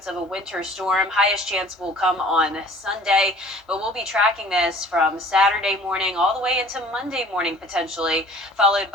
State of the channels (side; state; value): both; normal; correlation 0.50